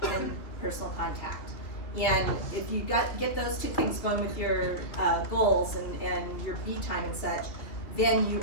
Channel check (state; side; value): late; right; 3.1 ms